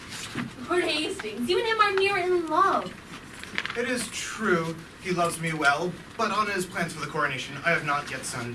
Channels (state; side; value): identical; both; correlation 1.00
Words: Lord Hastings, you and him are near in love. It is true he loves me well, but on his plans for the coronation, I have not yet